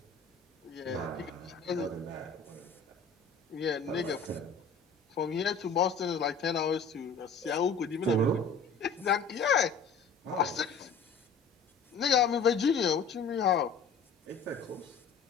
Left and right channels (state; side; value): quieter; right; 4.9 dB